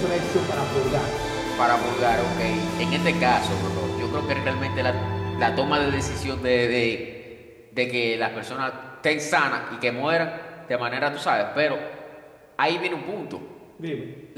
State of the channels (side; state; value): both; identical; correlation 1.00